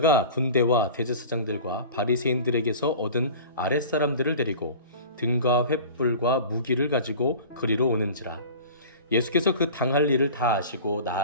군대와 대제사장들과 바리새인들에게서 얻은 아랫사람들을 데리고 등과 횃불과 무기를 가지고 그리로 오는지라. 예수께서 그 당할 일을 다 아시고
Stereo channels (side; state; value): both; inverted; correlation -0.38